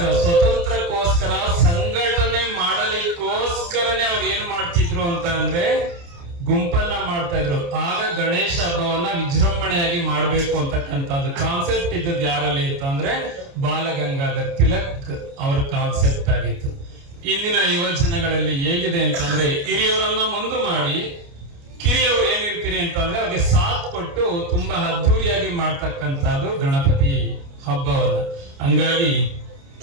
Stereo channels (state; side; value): late; left; 29 ms